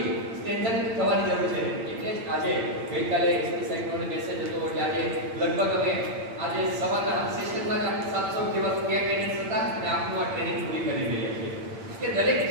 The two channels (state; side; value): late; left; 8.8 ms